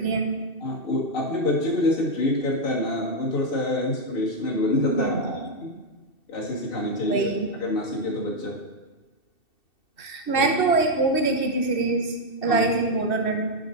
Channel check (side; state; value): right; late; 2.7 ms